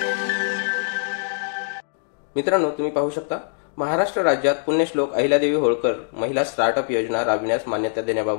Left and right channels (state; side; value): silent; right; digital silence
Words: मित्रांनो, तुम्ही पाहू शकता, महाराष्ट्र राज्यात पुण्यश्लोक अहिल्यादेवी होळकर महिला स्टार्टअप योजना राबविण्यास मान्यता